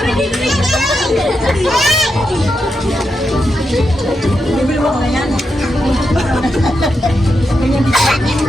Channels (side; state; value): both; normal; correlation 0.85